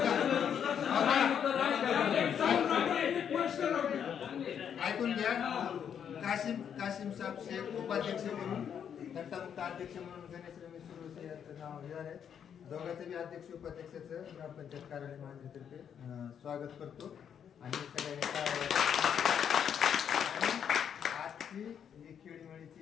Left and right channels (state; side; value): quieter; right; 8.3 dB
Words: ऐकून घ्या. काशिम साहेब शेख उपाध्यक्ष म्हणून, घंटामुक्त अध्यक्ष म्हणून गणेश रमेश सुरवसे यांचं नाव घेणार आहे. दोघांचं बी अध्यक्ष उपाध्यक्षाचं ग्रामपंचायत कार्यालय महानगरतर्फे स्वागत करतो. आणि सगळ्यांनी आजची ही